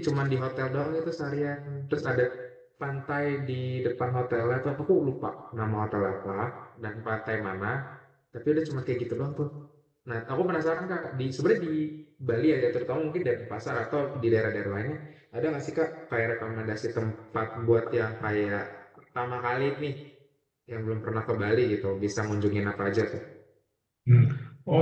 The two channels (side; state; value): both; identical; correlation 1.00